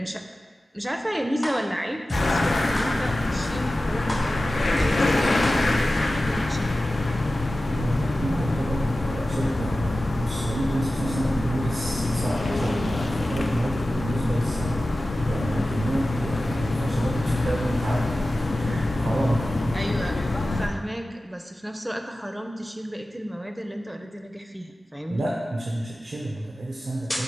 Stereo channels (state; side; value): normal; both; correlation 0.95